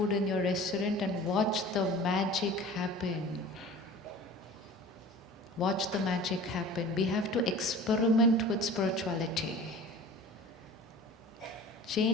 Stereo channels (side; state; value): both; normal; correlation 0.41